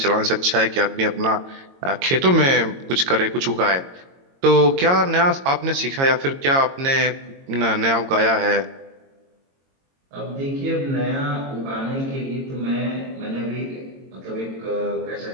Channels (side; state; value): left; late; 22 ms